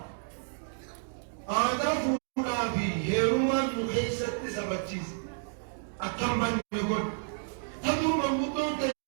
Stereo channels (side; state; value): left; silent; digital silence